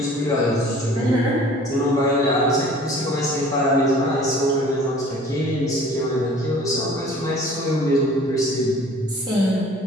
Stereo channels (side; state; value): both; normal; correlation 0.49